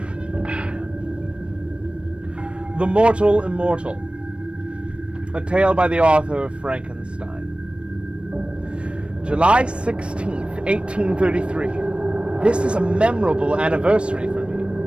The Mortal Immortal, a tale by the author of Frankenstein. July 16th, 1833. This is a memorable anniversary for me.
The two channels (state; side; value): late; left; 0.059 ms